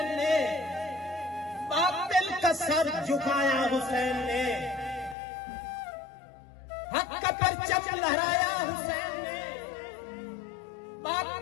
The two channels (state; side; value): drops out; right; at 5.2 s